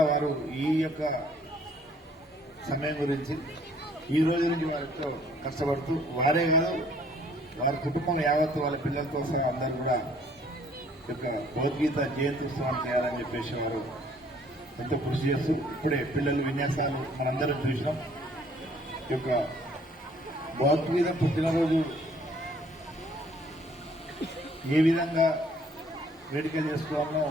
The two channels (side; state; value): both; normal; correlation 0.60